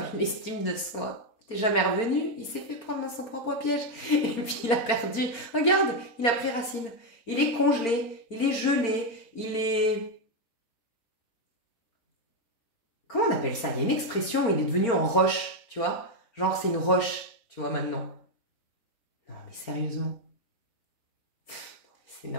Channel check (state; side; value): late; right; 4.4 ms